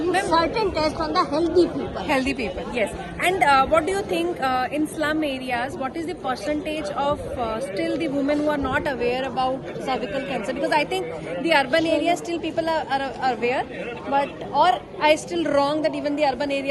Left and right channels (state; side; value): identical; both; correlation 1.00